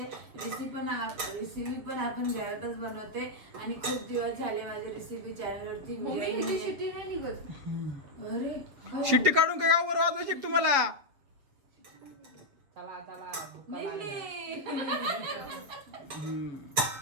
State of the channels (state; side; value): late; left; 6.8 ms